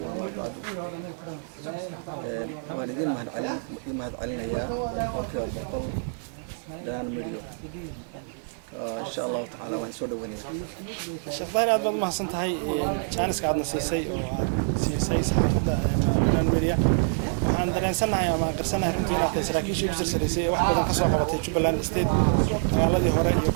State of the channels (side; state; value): left; silent; digital silence